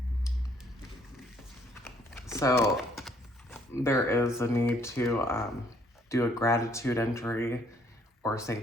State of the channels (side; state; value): both; normal; correlation 0.65